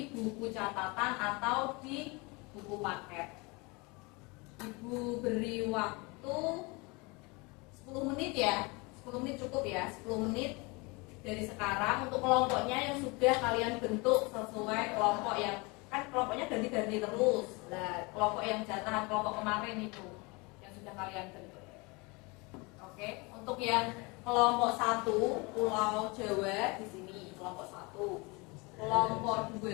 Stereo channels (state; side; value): quieter; right; 27.2 dB